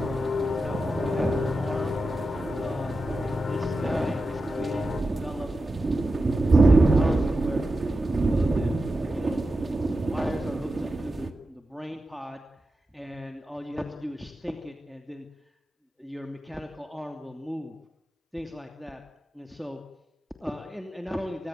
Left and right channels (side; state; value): both; normal; correlation 0.91